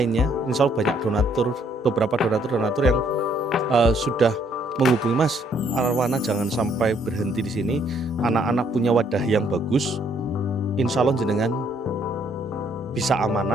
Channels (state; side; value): normal; both; correlation 0.67